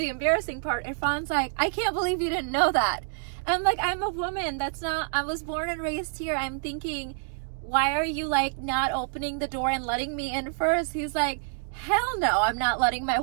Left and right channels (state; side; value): silent; left; digital silence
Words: embarrassing part. Irfan's like, I can't believe you didn't know that. And I'm like, I'm a woman. That's not, I was born and raised here. I'm thinking, why are you like not opening the door and letting me in first? He's like, hell no, I'm not letting my